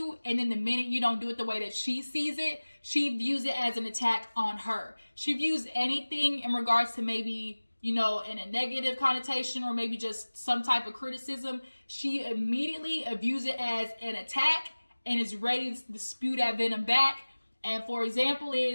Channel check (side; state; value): both; inverted; correlation -1.00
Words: and then the minute you don't do it the way that she sees it, she views it as an attack on her. She views anything in regards to maybe, you know, in a negative connotation or maybe just some type of criticism, she immediately views it as an attack and is ready to spew that venom back. And for example